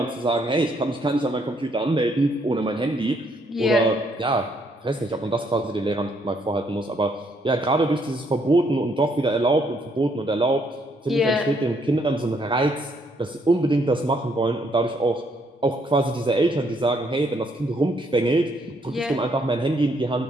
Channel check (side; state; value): both; normal; correlation 0.71